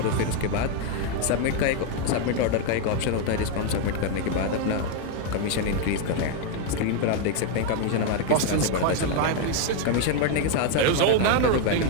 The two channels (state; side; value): different; both; correlation 0.01